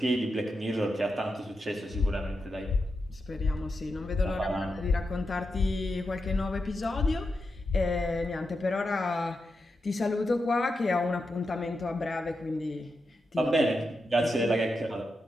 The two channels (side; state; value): both; normal; correlation 0.87